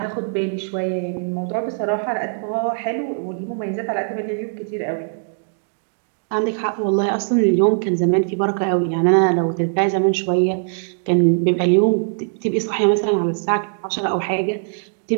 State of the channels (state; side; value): silent; left; digital silence